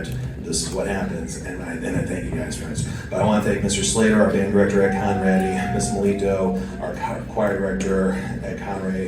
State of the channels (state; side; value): identical; both; correlation 1.00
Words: this is what happens, and I thank you guys for it. But I want to thank Mr. Slater, our band director at Conrady, Ms. Melito, our choir director at Conrady